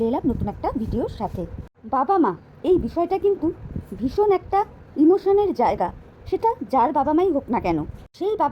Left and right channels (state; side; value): identical; both; correlation 1.00